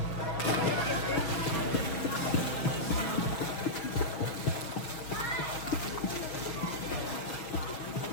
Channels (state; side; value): late; right; 6.5 ms